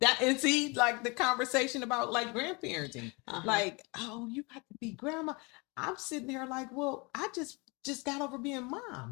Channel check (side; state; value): right; quieter; 28.6 dB